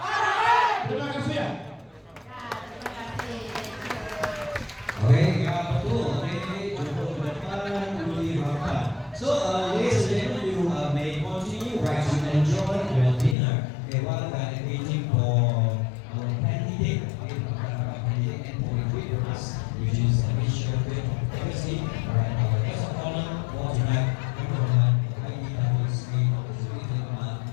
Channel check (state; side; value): drops out; right; at 13.4 s